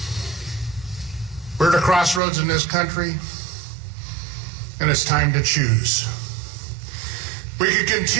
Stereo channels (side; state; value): left; drops out; at 2.2 s